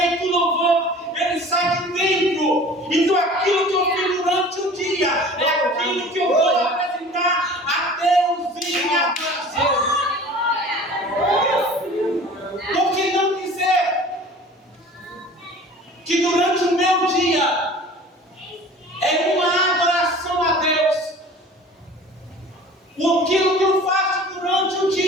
louvor, ele sai de dentro. Então aquilo que eu fiz durante o dia é aquilo que eu vou apresentar a Deus em adoração. Por que não dizer que durante o meu dia é uma adoração a Deus? Aquilo que eu faço durante o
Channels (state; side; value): normal; both; correlation 0.44